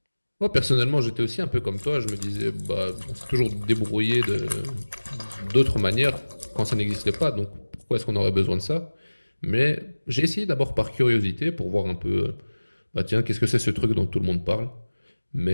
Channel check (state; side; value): inverted; both; correlation -1.00